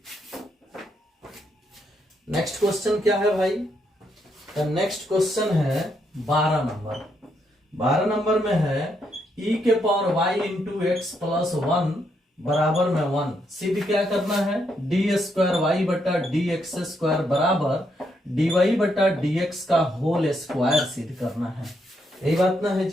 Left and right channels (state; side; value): normal; both; correlation 0.77